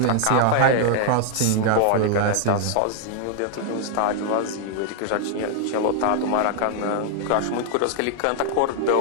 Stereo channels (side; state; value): both; different; correlation 0.00